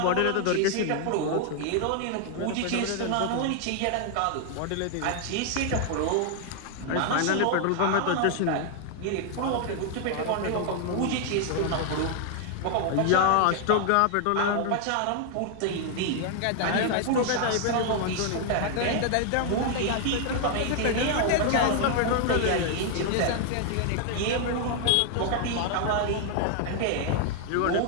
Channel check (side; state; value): both; different; correlation 0.00